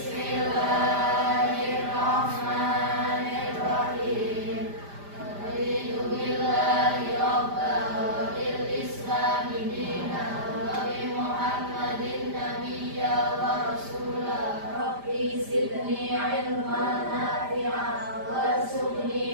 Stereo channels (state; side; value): late; left; 5.0 ms